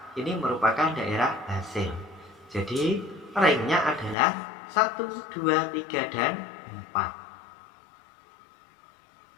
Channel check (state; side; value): drops out; right; at 4.2 s